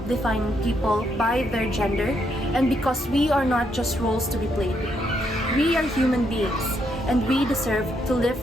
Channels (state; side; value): normal; both; correlation 0.76